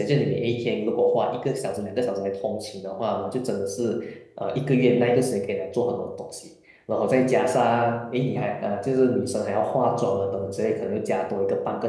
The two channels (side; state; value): both; identical; correlation 1.00